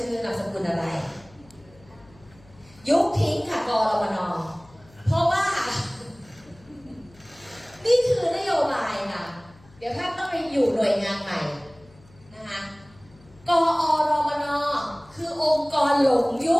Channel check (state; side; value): noise; left; hum, 26 dB below the sound